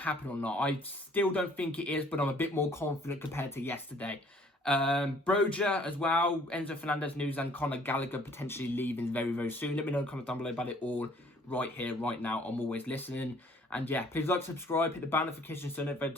happen or not? I still don't think it is, but I'm a bit more confident compared to yesterday. Broja as well, Enzo Fernandez news, and Conor Gallagher potentially leaving very, very soon. Let me know in the comments down below about it all right here, right now. I'm always listening. And yeah, please like, subscribe, hit the bell notification so every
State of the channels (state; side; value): normal; both; correlation 0.57